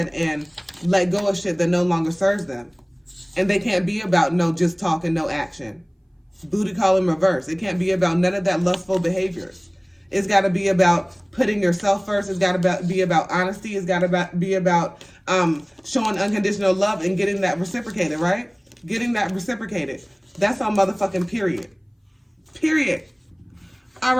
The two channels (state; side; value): identical; both; correlation 1.00